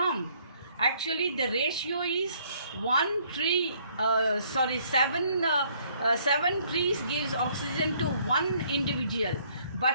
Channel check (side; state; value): both; inverted; correlation -0.64